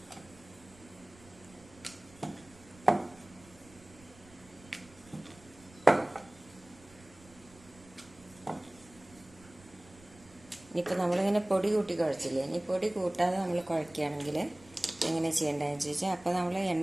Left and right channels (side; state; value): right; noise; rumble, 24 dB below the sound